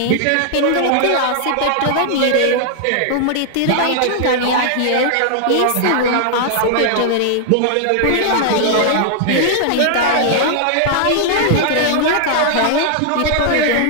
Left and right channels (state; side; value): different; both; correlation -0.01